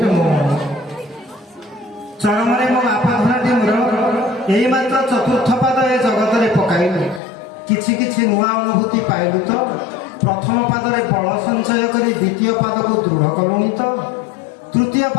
ରେ ମୋ ମନ। ଚରମରେ ମୋ ବାପା ଧନଟି ମୋର ଏଇ ମାତ୍ର ଚତୁର୍ଥ ପାଦ ଏ ଜଗତରେ ପକାଇଲୁ। କିଛି କିଛି ନୂଆ ଅନୁଭୂତି ପାଇଲୁ ତ? ପ୍ରଥମ ପାଦରେ ବଳ ସଞ୍ଚୟ କରି ଦ୍ୱିତୀୟ ପାଦକୁ ଦୃଢ଼ କଲୁଣି ତ? ତୃତୀୟ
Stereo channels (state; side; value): drops out; right; at 7.2 s